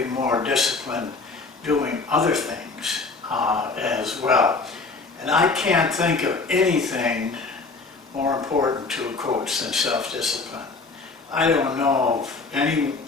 more disciplined doing other things as well. And I can't think of anything more important to a coach than self-discipline. I don't know of any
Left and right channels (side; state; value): right; quieter; 4.0 dB